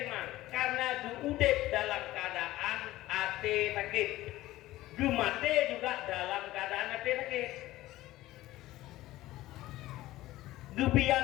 iman karena diudip dalam keadaan ate sakit. Gemate juga dalam keadaan ate sakit.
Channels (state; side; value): quieter; right; 16.5 dB